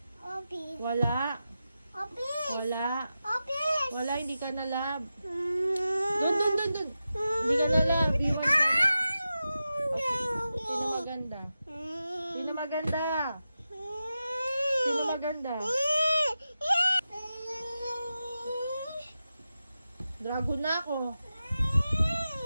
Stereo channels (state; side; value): inverted; both; correlation -0.91